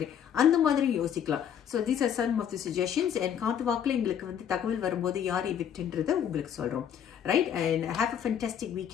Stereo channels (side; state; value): right; quieter; 8.8 dB